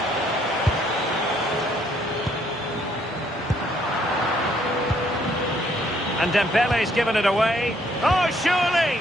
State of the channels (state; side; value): normal; both; correlation 0.67